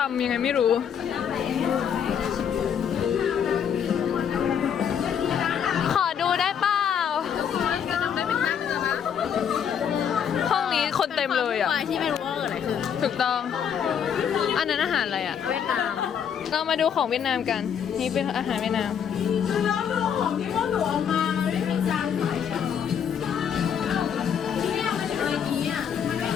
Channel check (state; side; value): quieter; right; 8.0 dB